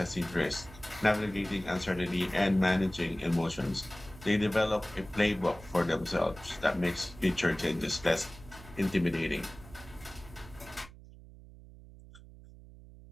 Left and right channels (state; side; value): noise; right; hum, 19 dB below the sound